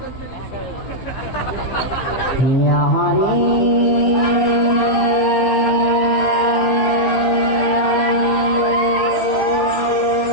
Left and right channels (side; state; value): right; late; 15 ms